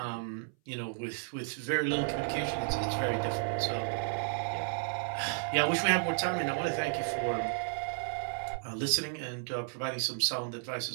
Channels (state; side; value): silent; left; 56 dB below the other